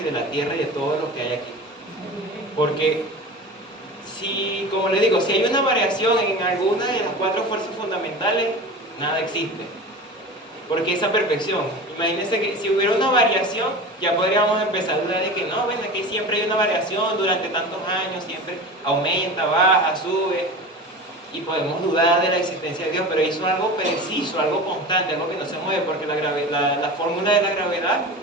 de la tierra y de todo lo que hay aquí. Porque como le digo, si hay una variación en alguna de las 4 fuerzas fundamentales, nada existe. Porque esa perfección, imagínense que si hubiera una variación, ya podríamos empezar a dudar de que no, ven, aquí siempre hay una variación durante tantos años, siempre aumenta, baja, sube, y podemos dudar de la existencia de Dios, pero hizo algo preciso, algo constante, algo que no se mueve, porque la fórmula de la gravedad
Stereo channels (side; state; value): both; normal; correlation 0.32